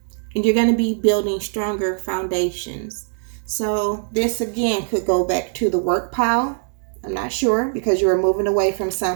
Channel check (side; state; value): left; silent; digital silence